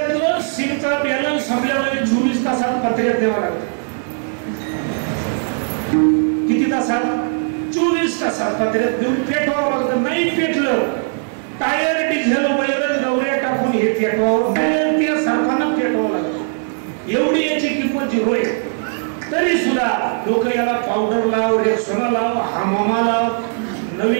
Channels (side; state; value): left; silent; 67 dB below the other